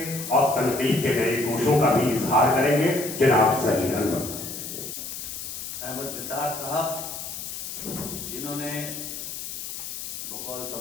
और तनकीद के नए गोशों का भी इजहार करेंगे। जनाब सही अहमद निसार साहब, जिन्होंने बकौल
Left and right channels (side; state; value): left; noise; hiss, 7 dB below the sound